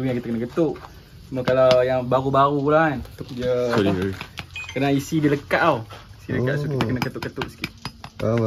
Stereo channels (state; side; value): identical; both; correlation 1.00